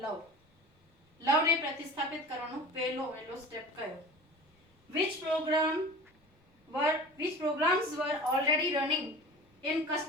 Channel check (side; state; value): both; normal; correlation 0.38